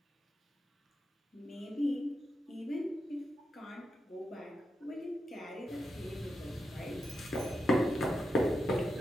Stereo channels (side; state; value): both; normal; correlation 0.87